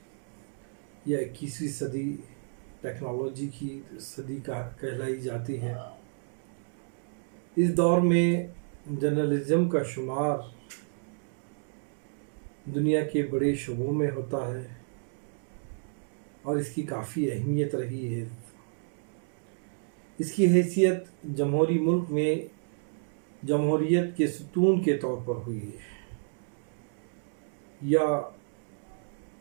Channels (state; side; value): silent; left; digital silence